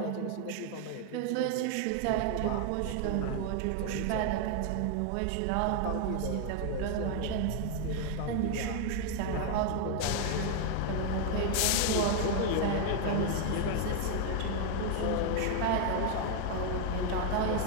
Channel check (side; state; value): both; different; correlation 0.00